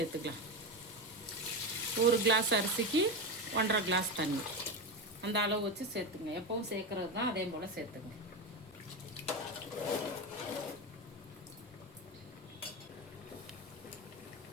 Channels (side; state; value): both; normal; correlation 0.17